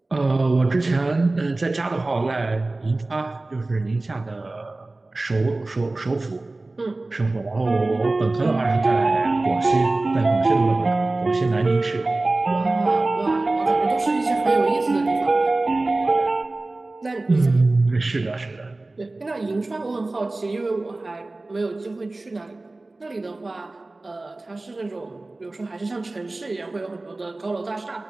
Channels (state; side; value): quieter; left; 3.0 dB